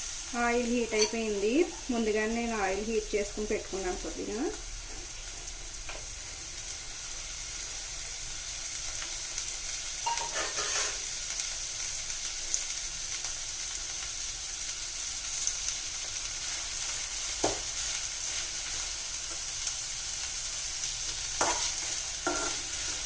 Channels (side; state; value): both; identical; correlation 1.00